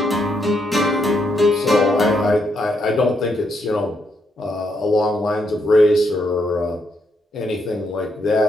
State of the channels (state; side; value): normal; both; correlation 0.77